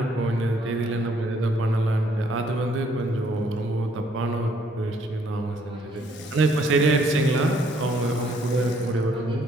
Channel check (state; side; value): normal; both; correlation 0.66